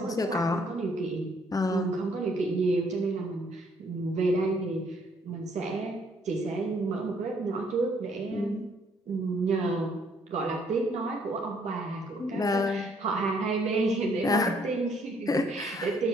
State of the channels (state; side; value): normal; both; correlation 0.66